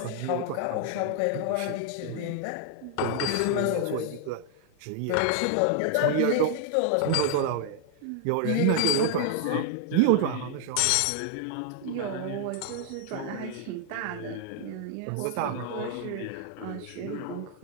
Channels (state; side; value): different; both; correlation 0.00